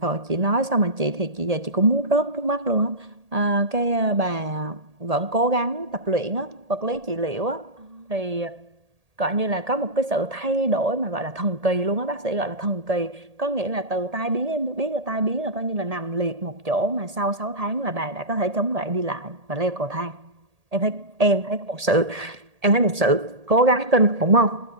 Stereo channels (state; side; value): late; left; 1.8 ms